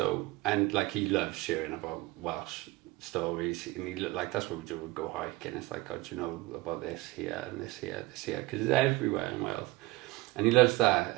and like, he loves sharing about Welsh stories, and he looked like, that's what we do, we go hiking. It's like, oh, do you know about this here and this here, because it's everywhere in Wales, and he loves that.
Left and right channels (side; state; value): left; quieter; 20.6 dB